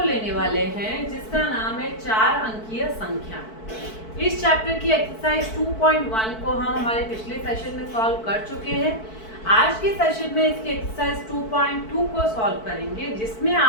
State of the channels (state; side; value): late; right; 4.6 ms